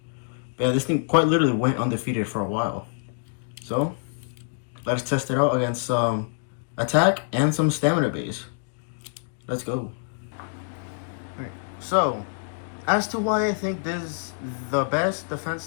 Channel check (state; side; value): silent; right; digital silence